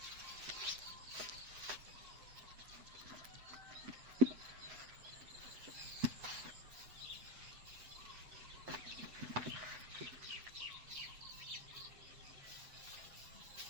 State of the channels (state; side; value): late; left; 8.0 ms